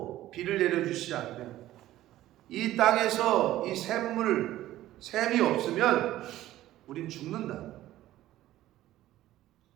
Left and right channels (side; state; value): left; quieter; 14.6 dB